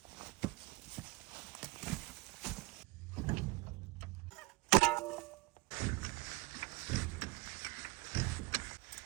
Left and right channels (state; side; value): quieter; left; 23.3 dB